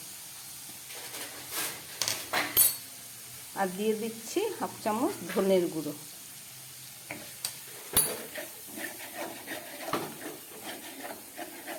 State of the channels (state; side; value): identical; both; correlation 1.00